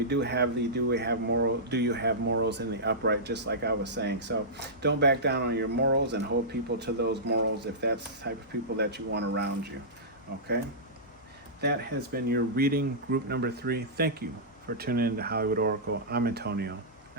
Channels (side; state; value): both; normal; correlation -0.16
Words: do you have morals in the upright, just like I was saying. So don't back down on your morals and hold people to those morals if that's the type of people that you want around you. Okay? That has been your reading, group number 3. Thank you for tuning in to Hollywood Oracle. I'm Antonio,